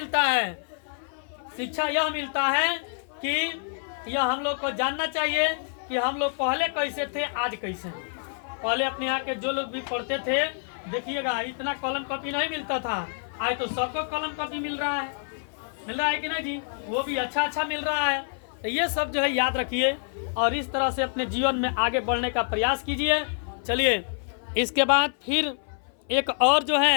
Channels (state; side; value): silent; right; 57 dB below the other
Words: है, शिक्षा यह मिलता है कि यह हम लोग को जानना चाहिए कि हम लोग पहले कैसे थे, आज कैसे हैं। पहले अपने यहाँ के जो लोग भी पढ़ते थे, देखिएगा इतना कलम कॉपी नहीं मिलता था, आज तो सबको कलम कॉपी मिल रहा है कि नहीं जी, वो भी अच्छा मिल रहा है। तो ये सब जो है याद रखिए और इस तरह से अपने जीवन में आगे बढ़ने का प्रयास कीजिए। चलिए इसके बाद फिर एक और जो